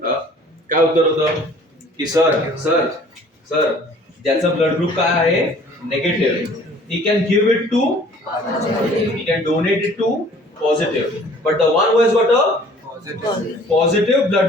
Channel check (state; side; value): normal; both; correlation 0.52